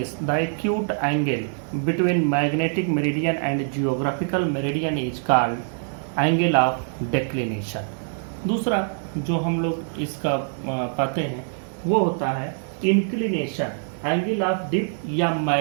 the acute angle between magnetic meridian and geographical meridian is called angle of declination. दूसरा जो हम लोग इसका पाते हैं वो होता है इंक्लिनेशन, एंगल ऑफ डिप या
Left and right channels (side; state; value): left; silent; digital silence